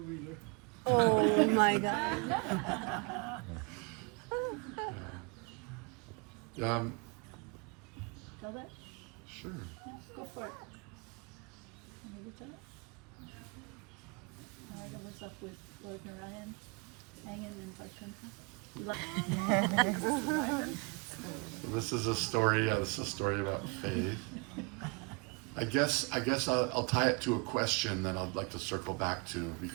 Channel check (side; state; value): left; quieter; 31.6 dB